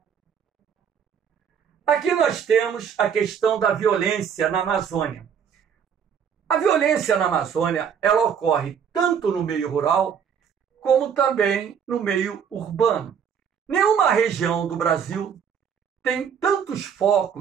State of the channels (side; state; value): left; quieter; 7.6 dB